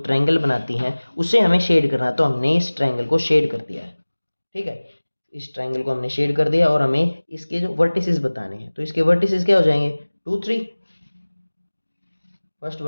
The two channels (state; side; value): inverted; both; correlation -1.00